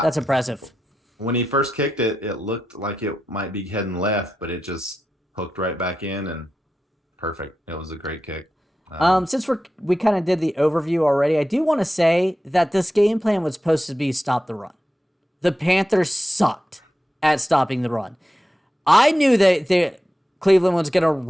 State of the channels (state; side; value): normal; both; correlation 0.90